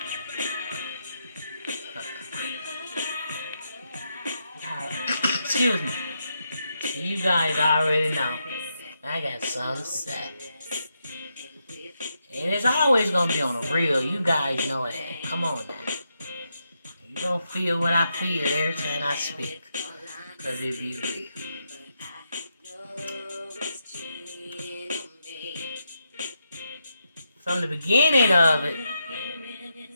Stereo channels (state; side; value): inverted; both; correlation -0.83